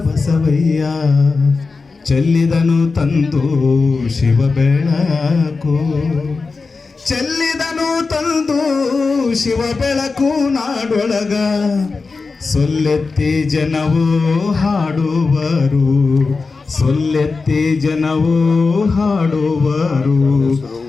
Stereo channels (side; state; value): right; quieter; 4.2 dB